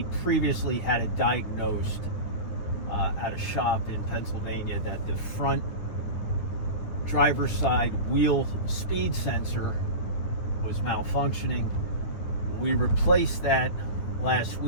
previously had it diagnosed at a shop in Pennsylvania that the front driver's side wheel speed sensor was malfunctioning. We replaced that last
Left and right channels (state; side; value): late; right; 9.6 ms